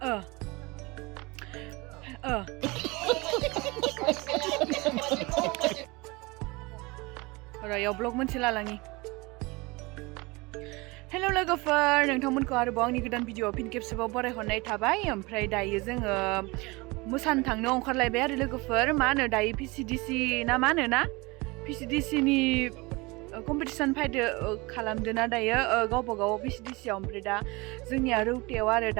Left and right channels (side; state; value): left; quieter; 24.6 dB